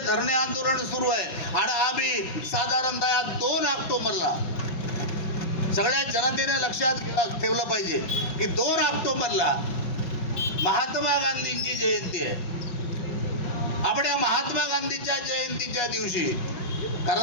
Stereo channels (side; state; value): right; late; 5.4 ms